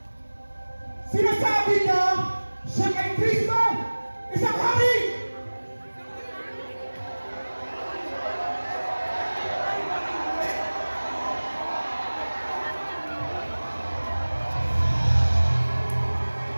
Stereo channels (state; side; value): inverted; both; correlation -1.00